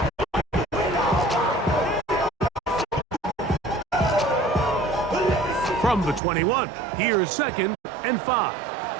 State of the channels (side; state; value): left; drops out; at 6.2 s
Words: From the 21, here's 2nd and 5.